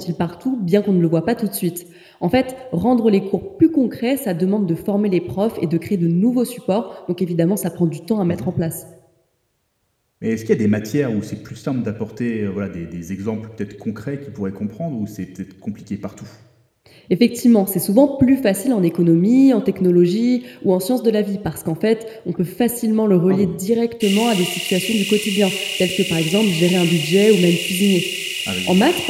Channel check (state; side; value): identical; both; correlation 1.00